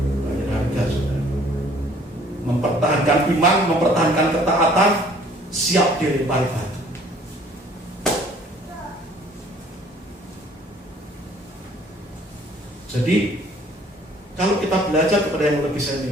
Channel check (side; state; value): both; normal; correlation 0.56